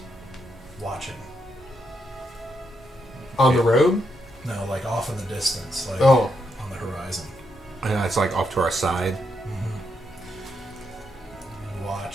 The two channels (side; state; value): both; normal; correlation 0.80